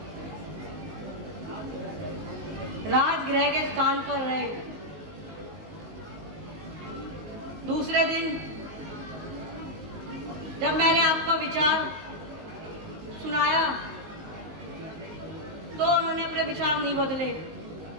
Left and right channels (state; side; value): late; left; 19 ms